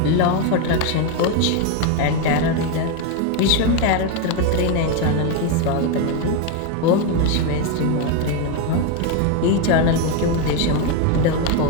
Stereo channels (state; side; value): different; both; correlation 0.02